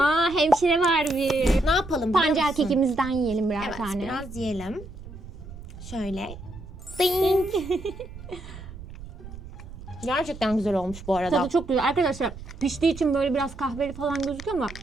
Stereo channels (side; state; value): right; noise; rumble, 14 dB below the sound